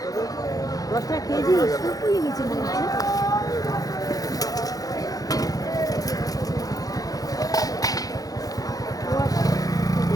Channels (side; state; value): right; late; 0.17 ms